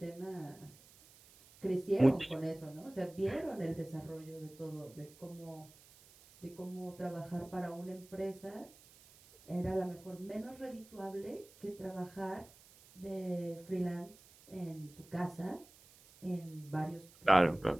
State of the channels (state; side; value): noise; right; hiss, 23 dB below the sound